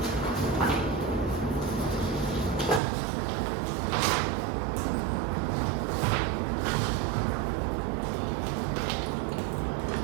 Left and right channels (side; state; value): left; drops out; at 2.8 s